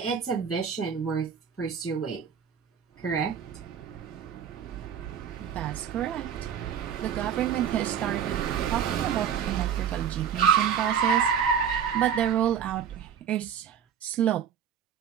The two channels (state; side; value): quieter; left; 8.3 dB